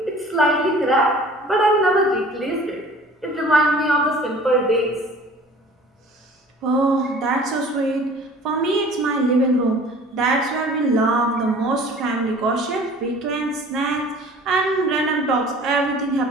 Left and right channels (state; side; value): normal; both; correlation 0.47